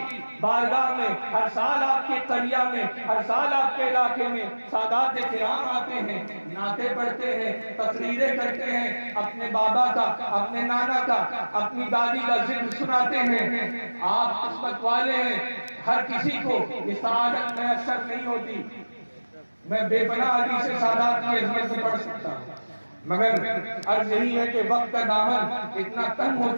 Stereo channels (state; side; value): inverted; both; correlation -1.00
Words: بارگاہ میں، ہر سال آپ کے قریہ میں، ہر سال آپ کے علاقے میں سادات کرام آتے ہیں، نعتیں پڑھتے ہیں، تقریریں کرتے ہیں، اپنے بابا کا، اپنے نانا کا، اپنی دادی کا ذکر سناتے ہیں۔ آپ قسمت والے ہیں، ہر کسی کو یہ سعادت میسر نہیں ہوتی۔ میں بے پناہ حدیث سادات کی عظمت سے پڑھ سکتا ہوں، مگر عرض یہی ہے کہ وقت کا دامن اتنا تنگ ہو